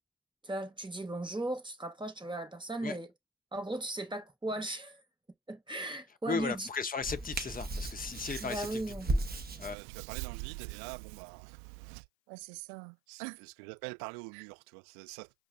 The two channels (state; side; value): drops out; left; at 9.8 s